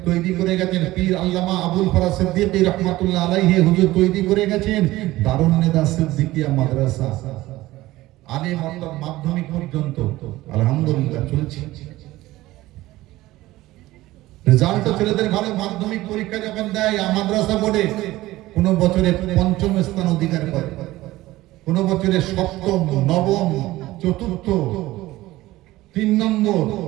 তৈরি করে গেছেন, পীর আল্লামা আবুল ফরাজ সিদ্দিকী রাহমাতুল্লাহ আলাইহি হুজুর তৈরি করে গেছেন দারুন নেদা সিদ্দিকিয়া মাদ্রাসা, আলিম অর্থাৎ মাধ্যমিক পর্যন্ত আলহামদুলিল্লাহ চলছে। রেজাল্ট ছেলেদের ভালো, মাধ্যমিক পরীক্ষা যখন দেয় মাদ্রাসা বোর্ডে কোন বছরে পঞ্চম স্থান অধিকার করে, কোন বছরে সপ্তম, নবম, চতুর্থ, 3 নম্বর,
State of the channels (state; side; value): quieter; left; 17.4 dB